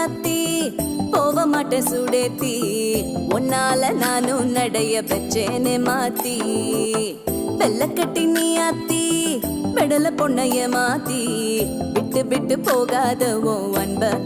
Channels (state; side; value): identical; both; correlation 1.00